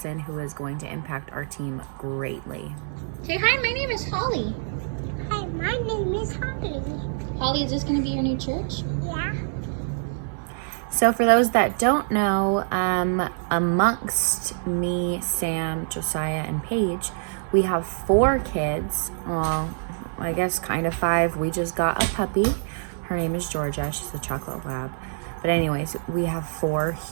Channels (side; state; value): left; silent; 61 dB below the other